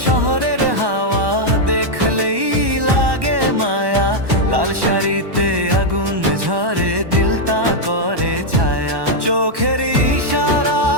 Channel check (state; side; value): late; left; 1.1 ms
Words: শহরের হাওয়া, দেখলেই লাগে মায়া, লাল শাড়িতে আগুন ঝরে, দিলটা করে ছায়া। চোখের